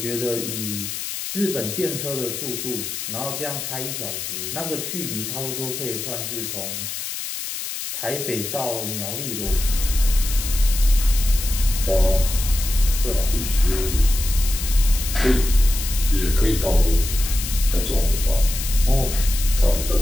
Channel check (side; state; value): left; noise; hiss, 6 dB below the sound